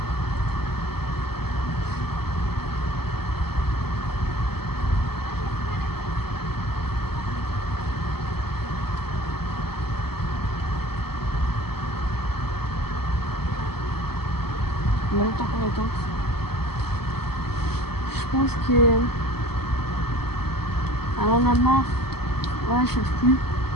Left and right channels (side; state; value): right; late; 0.96 ms